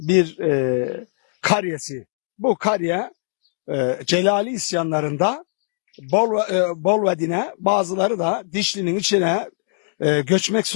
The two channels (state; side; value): silent; right; digital silence